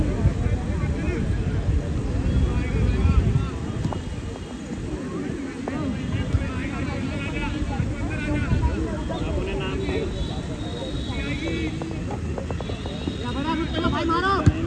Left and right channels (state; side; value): identical; both; correlation 1.00